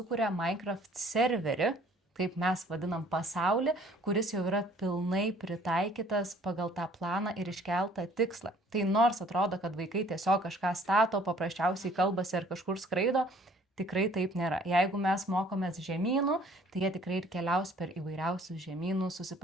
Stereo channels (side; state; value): both; normal; correlation 0.57